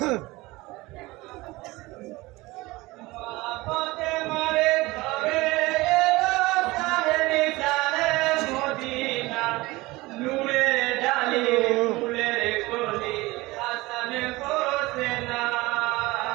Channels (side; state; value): left; quieter; 20.9 dB